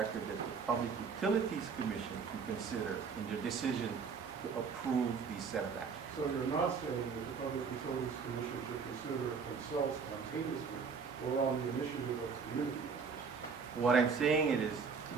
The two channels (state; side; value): quieter; left; 5.6 dB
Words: that the Public Utilities Commission can consider in their decision to approve these set of actions. So you're not saying that the Public Utilities Commission should consider it themselves spontaneously or on the initiative of community members? What I'm saying is